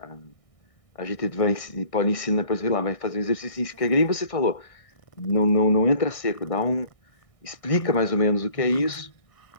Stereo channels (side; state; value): right; late; 1.6 ms